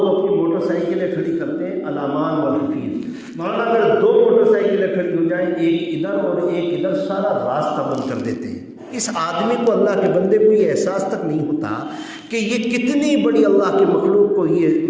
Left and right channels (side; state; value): both; identical; correlation 1.00